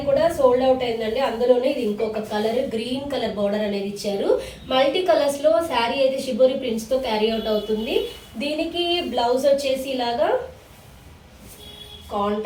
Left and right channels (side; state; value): both; identical; correlation 1.00